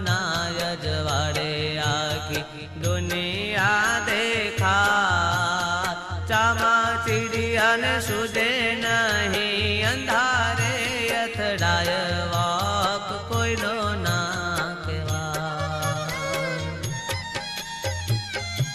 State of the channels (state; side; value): identical; both; correlation 1.00